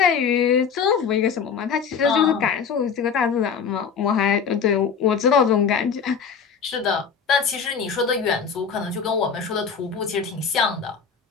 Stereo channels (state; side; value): quieter; right; 6.4 dB